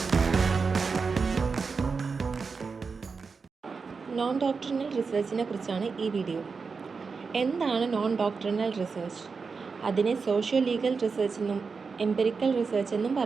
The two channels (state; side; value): quieter; left; 5.0 dB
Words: Non doctrinal റിസർച്ചിനെ കുറിച്ചാണ് ഈ video. എന്താണ് non doctrinal research? അതിനെ socio legal research എന്നും empirical research എന്നും